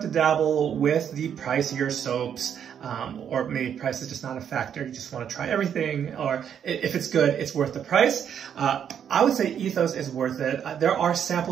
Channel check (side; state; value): left; quieter; 8.5 dB